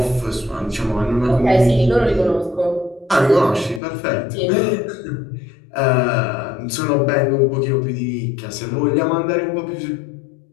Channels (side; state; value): right; drops out; at 3.8 s